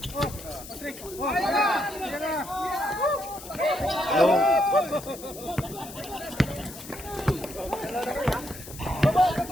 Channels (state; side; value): noise; left; hiss, 14 dB below the sound